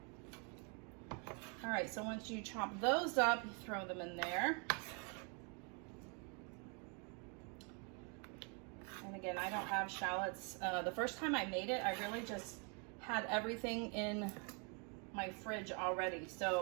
All right, so once you chop those up, you throw them in there. And again, I don't have shallots. The first time I made it, I really just had everything in my fridge already.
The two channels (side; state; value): left; quieter; 36.1 dB